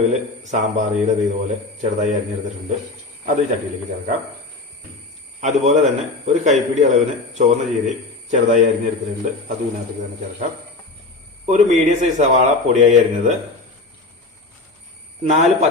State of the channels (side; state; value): right; quieter; 3.3 dB